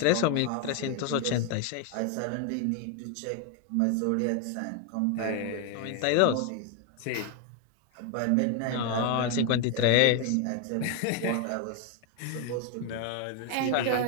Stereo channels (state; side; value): different; both; correlation 0.01